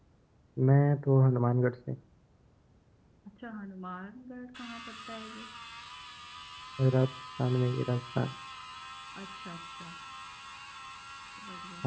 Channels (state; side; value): identical; both; correlation 1.00